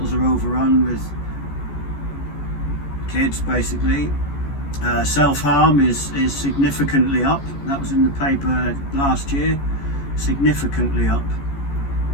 are overrun with kids, basically. Self-harm is significantly up. That was in the paper last year. Significantly up.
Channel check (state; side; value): late; right; 14 ms